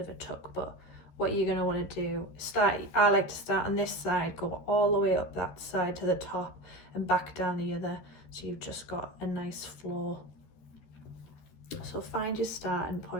a tuck. But what you're going to want to do, I like to start on this side, go all the way up that side to the top and back down the other, so you've just got a nice flow. So find your starting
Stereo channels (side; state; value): right; late; 13 ms